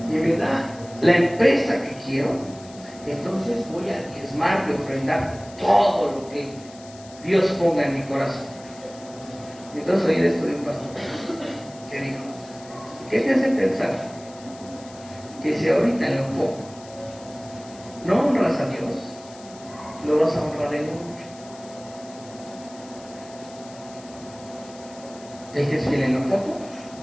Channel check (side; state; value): left; noise; hiss, 21 dB below the sound